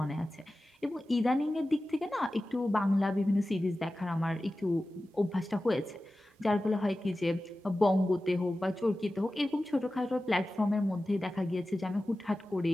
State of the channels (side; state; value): both; normal; correlation 0.95